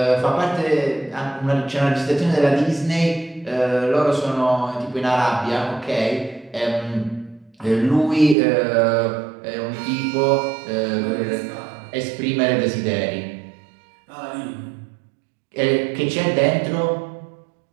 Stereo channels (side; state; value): left; drops out; at 8.3 s